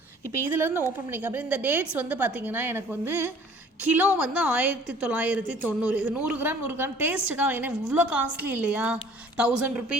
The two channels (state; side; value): normal; both; correlation 0.52